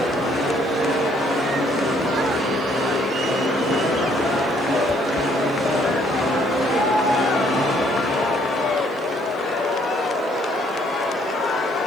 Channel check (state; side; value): noise; left; hiss, 29 dB below the sound